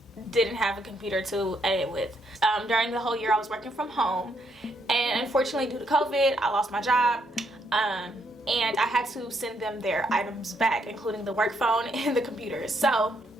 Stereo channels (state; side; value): normal; both; correlation 0.74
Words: didn't have a computer to edit with. During the whole year I was working from home, and unfortunately due to COVID I lost my job, and I had to send them their items back, including the work phone and the computer. So